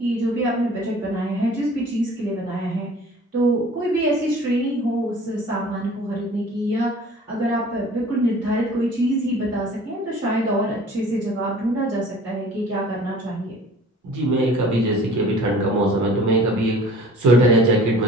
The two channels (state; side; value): normal; both; correlation 0.47